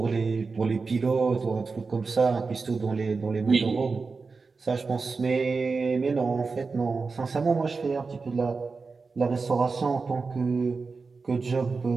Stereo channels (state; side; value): quieter; left; 4.4 dB